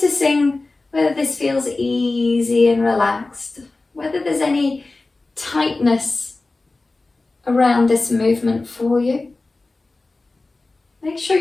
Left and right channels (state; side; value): quieter; right; 3.3 dB